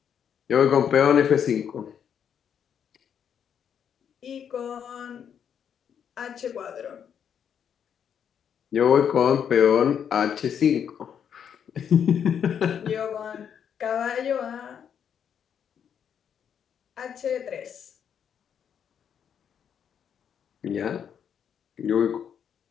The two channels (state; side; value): quieter; right; 8.2 dB